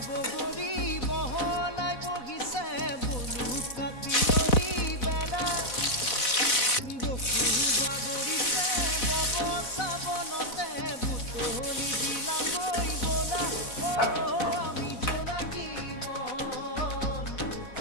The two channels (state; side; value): late; right; 4.0 ms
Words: বগৰী বহলাই বহিছে বলু কাটিয়ৰী বেলা বকুল বাগৰিছে বব চাবনতে বুটলি দিলাগৈ বলা